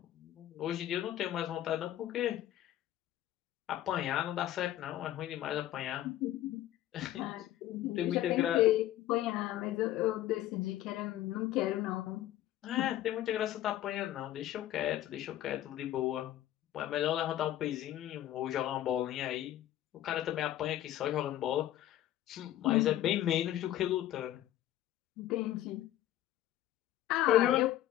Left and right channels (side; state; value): right; quieter; 13.3 dB